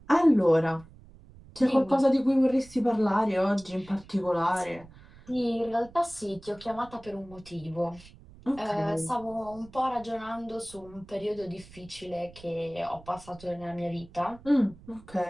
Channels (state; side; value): noise; right; rumble, 22 dB below the sound